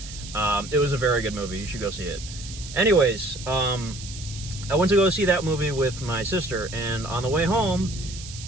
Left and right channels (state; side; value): noise; right; hiss, 13 dB below the sound